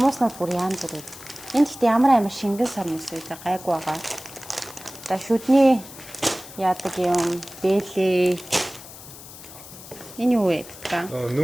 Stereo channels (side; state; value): left; noise; hiss, 16 dB below the sound